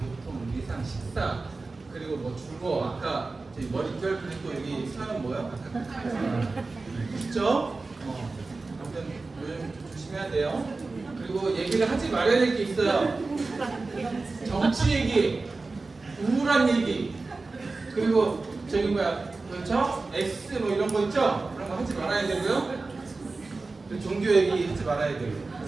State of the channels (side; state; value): left; quieter; 3.7 dB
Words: 위상, 식사, 그리고 뭐 주거, 아까 저희 머릿결 그리고 여기 사연 뭐요? 아까 있죠? 아무튼 요즘 좀 조심해야 돼요. 그리고 얘기를 하지 말아야 될 게 있어요. 정치 얘기, 우울한 얘기, 그리고 저기 뭐야, 그렇죠? X 뭐 이런 거 있죠? 그런 거 하지 말아야 되고요. 종교 얘기 하지 말아야 되고.